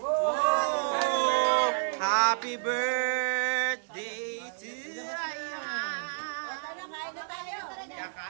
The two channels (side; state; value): left; silent; digital silence